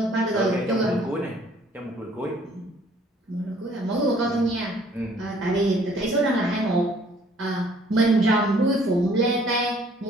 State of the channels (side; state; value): both; normal; correlation 0.59